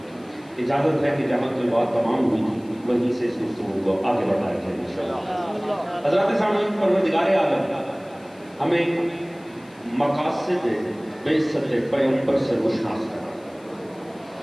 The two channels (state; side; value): noise; left; hiss, 28 dB below the sound